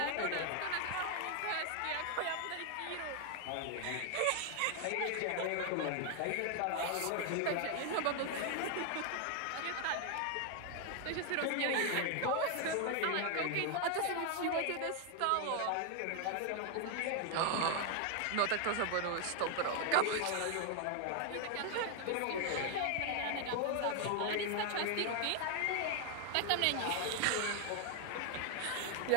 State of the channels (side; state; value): both; different; correlation 0.00